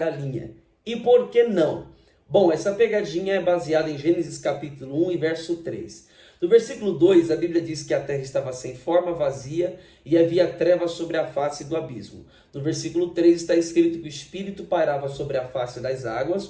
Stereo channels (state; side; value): identical; both; correlation 1.00